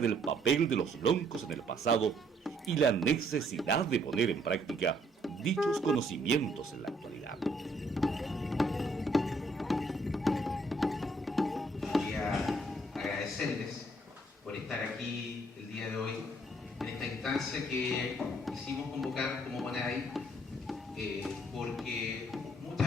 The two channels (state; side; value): normal; both; correlation 0.67